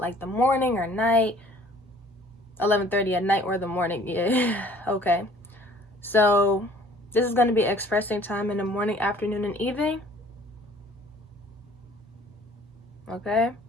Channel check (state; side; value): normal; both; correlation 0.54